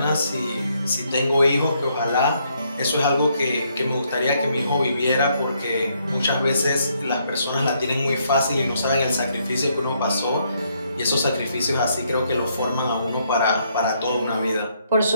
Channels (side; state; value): both; inverted; correlation -0.73